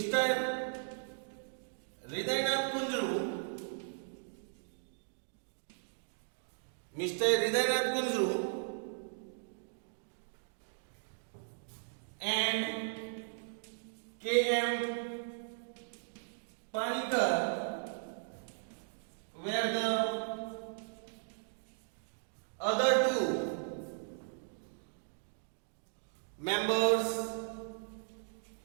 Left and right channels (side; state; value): left; silent; digital silence